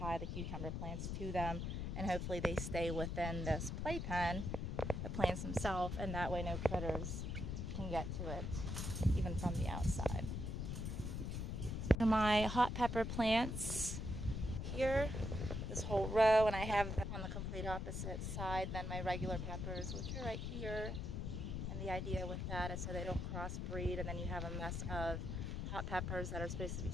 the cucumber plants to them, and hopefully they stay within this playpen, the plants themselves, and that way no critters can get to it, even from the outside. My hot pepper plants here, this whole row, and I have them on the complete opposite side than my regular peppers, which are right here. And the idea with that is so they don't crossbreed, and then you have a mess of hot peppers that are supposed to be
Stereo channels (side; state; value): left; noise; rumble, 3 dB below the sound